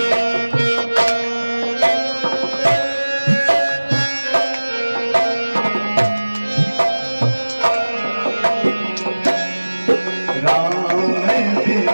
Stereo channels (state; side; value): inverted; both; correlation -1.00